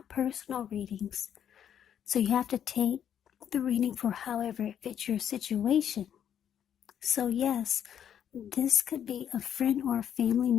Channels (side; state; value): right; quieter; 9.3 dB